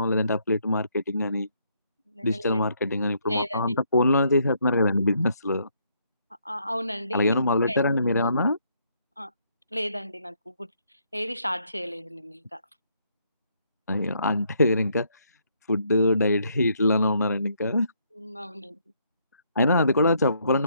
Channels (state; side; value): inverted; both; correlation -0.72